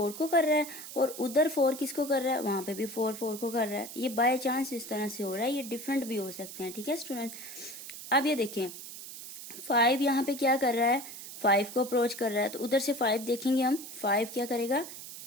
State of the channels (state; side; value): noise; right; hiss, 12 dB below the sound